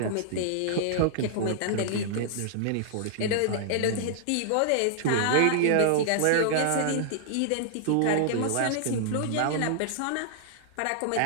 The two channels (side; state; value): both; different; correlation -0.01